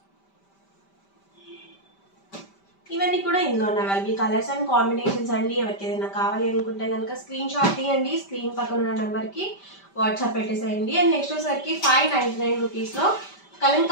ఇవన్నీ కూడా ఇందులో ఉన్న అవైలబుల్ కలర్స్ అండ్ కాంబినేషన్స్ అండి. ఎవరికి ఏదైనా కావాలి అనుకుంటే కనుక స్క్రీన్ షాట్ తీయండి. స్క్రీన్ పక్కన ఉన్న నెంబర్కి వాట్సాప్ పెట్టేసేయండి. అండ్ నెక్స్ట్ వచ్చేసరికి 599 రూపీస్లో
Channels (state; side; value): late; right; 5.1 ms